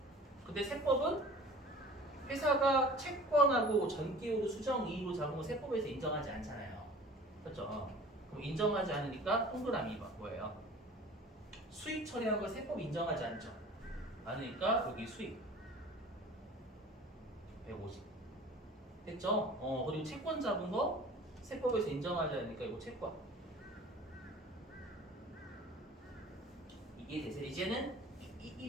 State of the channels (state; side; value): normal; both; correlation 0.44